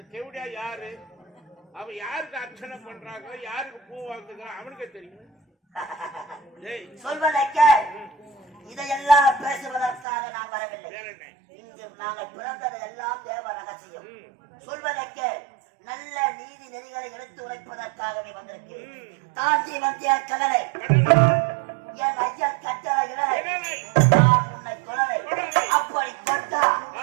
செவடியா யாரு? அவன் யாருக்கு அர்ச்சனை பண்றாங்க, யாருக்கு பூ வாங்குகிறான் அவனுக்கே தெரியும். டேய், சொல்வதை கேள். இதையெல்லாம் பேசுவதற்காக நான் வரவில்லை. வேற என்ன? இங்கு நாங்கள் பிறந்தது எல்லாம் தேவ ரகசியம். சொல்வதை கேள். நல்ல நீதி நெறிகளை எடுத்து உரைப்பதற்காகவே வந்திருக்கிறேன். தாண்டி வந்திய கடலை என் ஐயன் கட்டளை இடலை நான் உன்னை தொடரை அப்படி கொண்டா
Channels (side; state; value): left; drops out; at 10.1 s